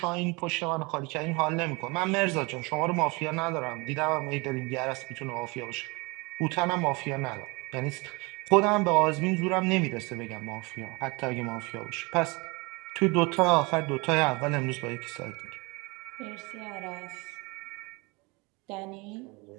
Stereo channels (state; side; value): quieter; left; 26.6 dB